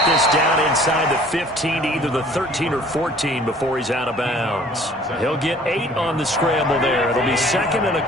this down inside the 15 to either the 13 or 14 before he's out of bounds. He'll get 8 on the scramble there. It'll be second and a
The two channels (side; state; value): both; normal; correlation 0.53